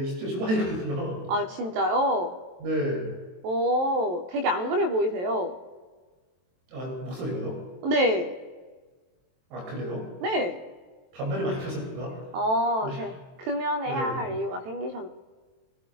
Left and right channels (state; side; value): late; left; 23 ms